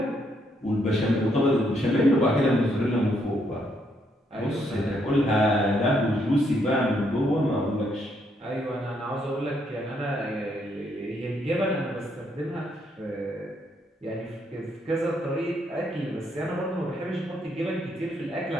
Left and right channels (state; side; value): normal; both; correlation 0.74